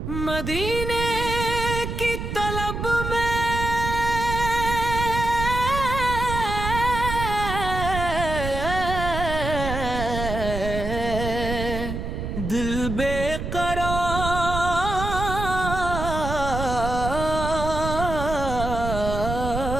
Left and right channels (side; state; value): right; noise; rumble, 4 dB below the sound